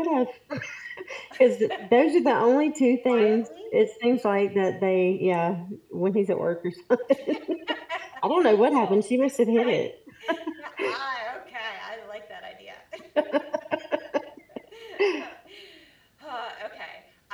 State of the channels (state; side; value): identical; both; correlation 1.00